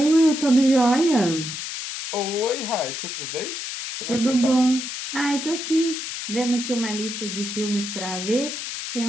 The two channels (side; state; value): left; noise; hiss, 6 dB below the sound